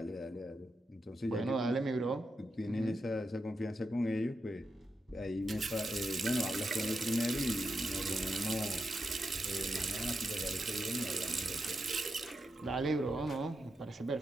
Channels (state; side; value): normal; both; correlation 0.86